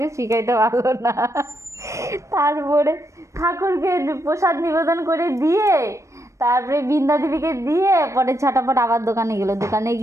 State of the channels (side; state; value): left; late; 0.15 ms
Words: শিখাইতে পারলো না। তারপরে ঠাকুরকে প্রসাদ নিবেদন করে দিয়ে তারপরে বৃন্দা দেবীকে দিয়ে পরে ছটাপট আবার দোকানে গেলো, দোকানে